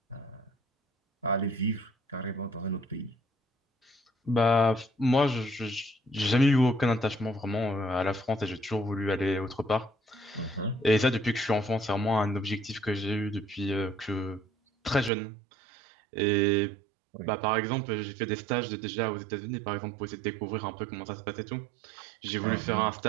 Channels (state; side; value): drops out; left; at 15.1 s